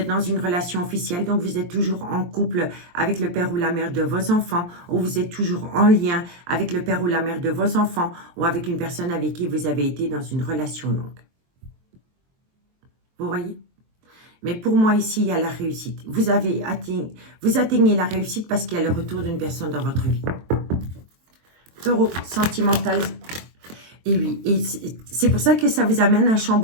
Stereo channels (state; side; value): late; left; 23 ms